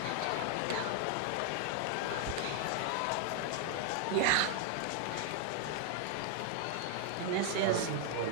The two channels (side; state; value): both; different; correlation 0.00